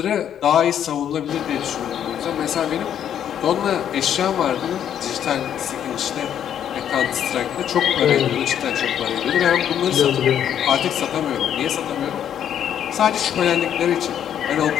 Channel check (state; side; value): quieter; right; 9.6 dB